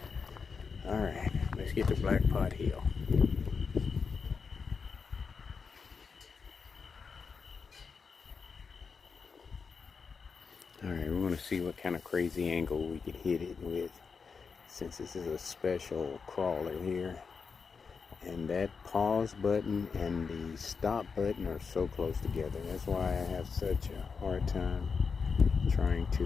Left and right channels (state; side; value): quieter; right; 5.4 dB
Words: Alright, let's get to Black Pot Hill. Alright, we're going to see what kind of crazy angle we can hit it with, since this is a special crawler here. And that pause button and the stop button are so close together. That's why I have such a hard time trying